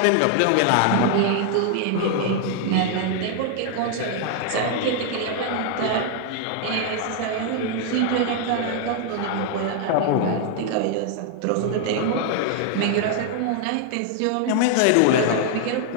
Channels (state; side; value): different; both; correlation 0.00